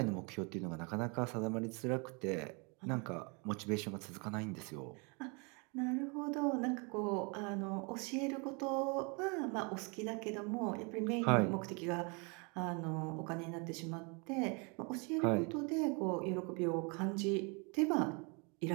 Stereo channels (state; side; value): quieter; left; 32.3 dB